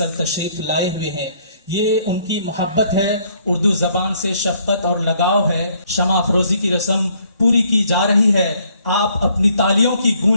تشریف لائے ہوئے ہیں۔ یہ ان کی محبت ہے، اردو زبان سے شفقت اور لگاؤ ہے۔ شمع افروزی کی رسم پوری کی جا رہی ہے۔ آپ اپنی تالیوں کی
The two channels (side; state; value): both; inverted; correlation -0.65